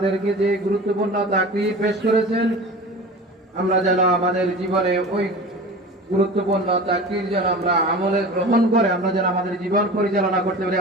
যে গুরুত্বপূর্ণ তাকরির পেশ করেছেন, আমরা যেন আমাদের জীবনে ওই গুরুত্বপূর্ণ তাকরির যেন আমরা আমলে গ্রহণ করে আমরা যেন আমাদের জীবন পরিচালনা করতে পারি।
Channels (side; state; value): both; normal; correlation 0.35